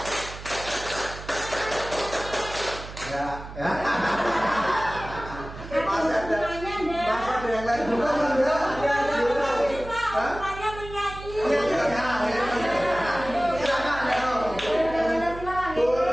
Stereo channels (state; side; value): noise; right; hum, 13 dB below the sound